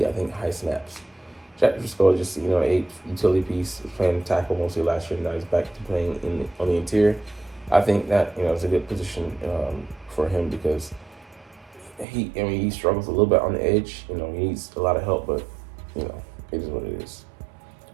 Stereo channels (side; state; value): left; drops out; at 12.1 s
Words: I think, high snaps. Jack Driscoll just, 8 utility piece, was playing tackle mostly last year, now he's back to playing on the interior. I think that, is a good position for him because he struggles a little bit on the edge. He needs a lot of help, but, it is what it is.